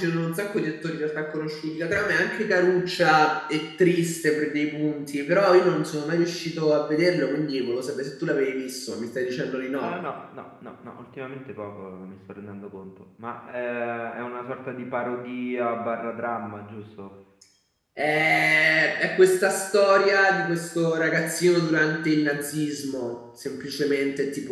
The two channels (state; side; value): identical; both; correlation 1.00